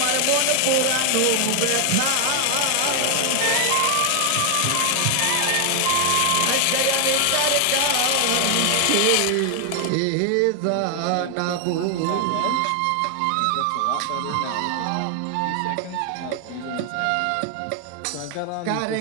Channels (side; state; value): both; different; correlation 0.00